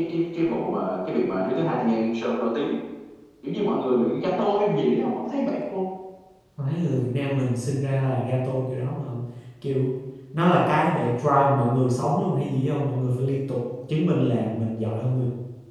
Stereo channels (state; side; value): identical; both; correlation 1.00